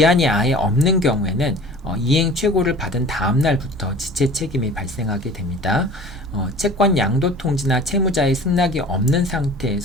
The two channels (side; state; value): both; normal; correlation 0.43